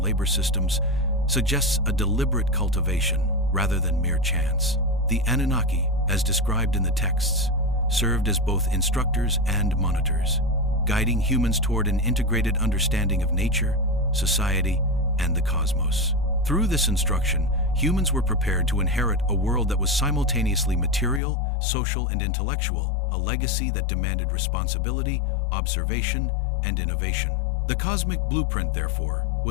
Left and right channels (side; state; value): right; drops out; at 21.2 s